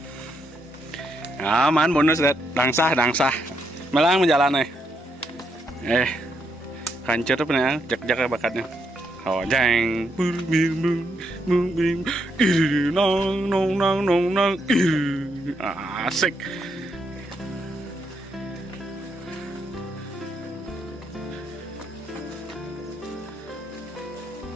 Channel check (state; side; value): normal; both; correlation 0.78